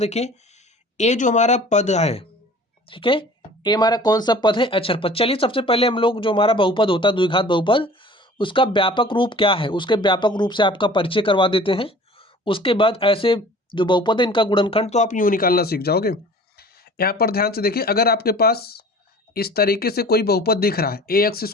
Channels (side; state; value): both; normal; correlation 0.46